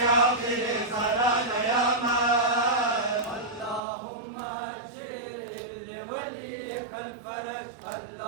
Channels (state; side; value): drops out; left; at 3.8 s